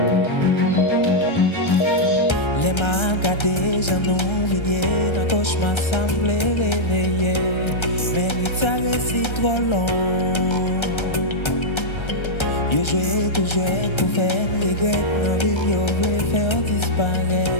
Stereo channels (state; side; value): late; right; 1.3 ms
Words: mains gâtées, j'en oublié, dans cauchemar semblait réveiller. Mais ça reste trop long. Yo joué, tout joué, pour faire regret. Dans vie, yo voulait faire